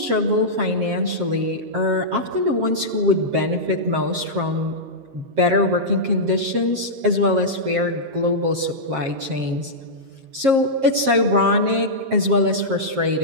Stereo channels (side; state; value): left; late; 7.4 ms